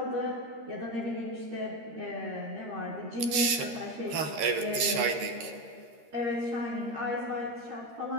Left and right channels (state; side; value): late; left; 13 ms